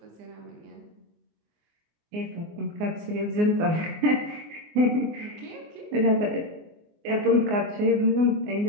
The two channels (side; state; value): left; late; 24 ms